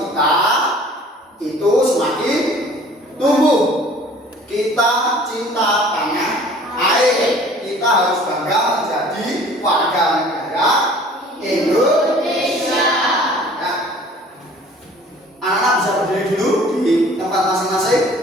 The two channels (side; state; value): both; normal; correlation 0.50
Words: kita itu semakin tumbuh. Kita cinta tanah air. Kita harus bangga menjadi warga negara Indonesia. Ya. Anak-anak bisa berdiri dulu di tempat